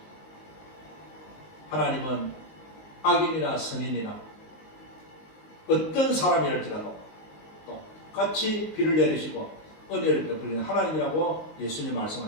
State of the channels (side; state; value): right; late; 19 ms